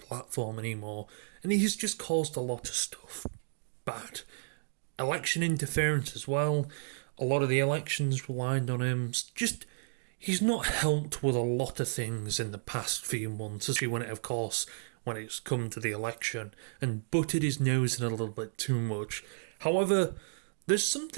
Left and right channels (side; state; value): left; silent; digital silence